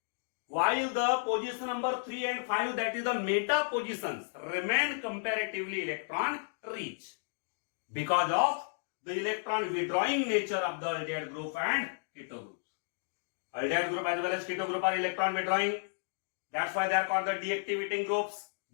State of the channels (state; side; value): silent; right; digital silence